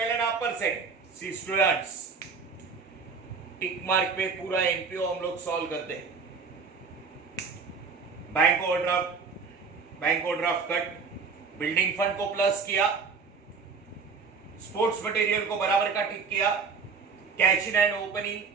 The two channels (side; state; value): left; quieter; 5.2 dB